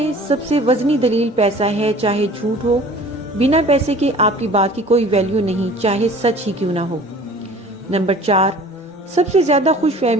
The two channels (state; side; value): normal; both; correlation 0.46